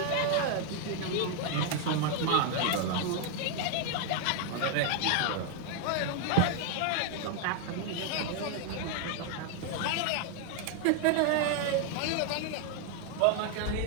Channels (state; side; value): different; both; correlation 0.00